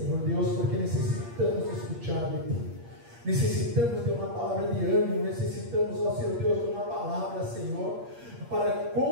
Deus, porque necessitamos escutar de ti. Necessitamos de uma palavra de ânimo, necessitamos, ó Senhor Deus, de uma palavra, Senhor, para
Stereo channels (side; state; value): left; late; 8.6 ms